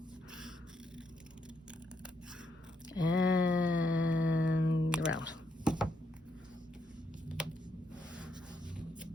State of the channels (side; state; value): both; normal; correlation 0.78